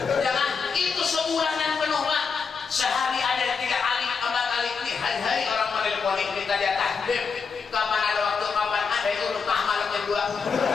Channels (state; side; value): quieter; right; 5.5 dB